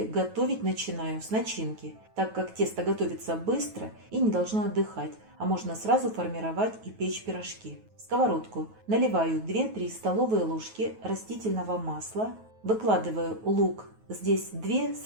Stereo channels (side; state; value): left; late; 9.3 ms